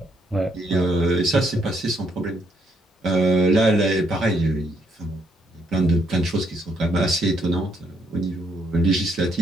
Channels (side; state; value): both; normal; correlation 0.72